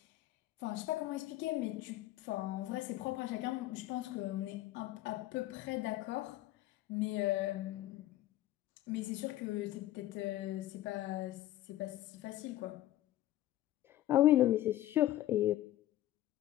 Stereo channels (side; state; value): right; quieter; 14.6 dB